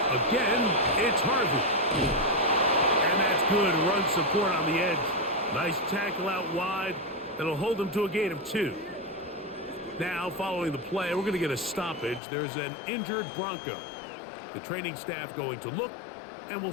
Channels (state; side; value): drops out; right; at 12.2 s